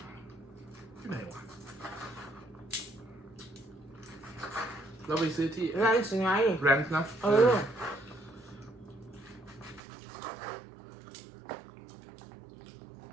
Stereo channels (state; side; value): drops out; left; at 9.8 s